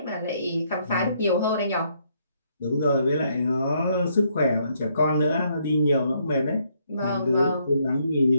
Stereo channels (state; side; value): inverted; both; correlation -0.71